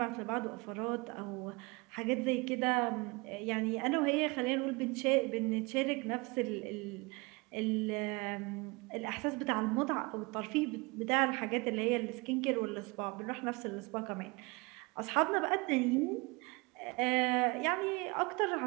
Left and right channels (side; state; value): left; quieter; 26.7 dB